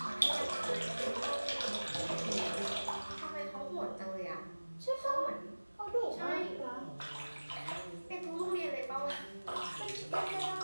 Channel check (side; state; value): both; inverted; correlation -1.00